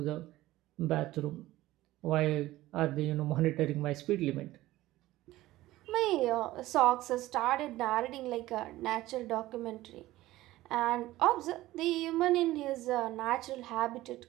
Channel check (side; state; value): left; quieter; 16.6 dB